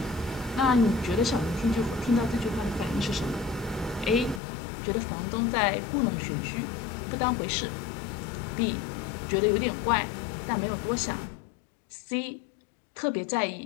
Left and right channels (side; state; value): right; drops out; at 4.4 s